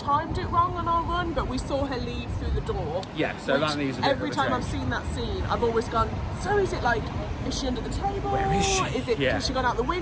it wrong on our run, but we saw her leave through the door. Yeah, so that needs a bit every of a time change. I've seen that scene, I've always gone, so is it like, is she under the table? Where is she? Has she gone out the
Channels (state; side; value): identical; both; correlation 1.00